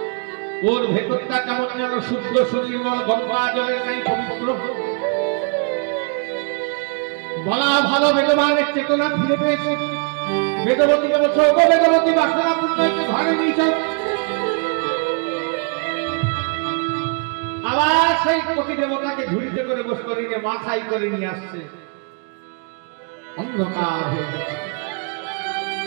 ওর ভেতরটা কেমন যেন শুদ্ধ সুনির্মল গঙ্গা জলের নেই, পবিত্র। বলা ভালো বেদবানের চেতনা ফিরে পেয়েছে। বেদবতীকে বলছো ও বেদবতী বাসনা পুণ্যকে ঘরে নিয়েছে। আবার সেই কোটি দেবতাকে ঝুড়িতে করে বস করে নিয়ে মাথায় করে নিয়ে আসছে। অন্ধকার হয়ে গেছে,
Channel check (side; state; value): left; quieter; 37.6 dB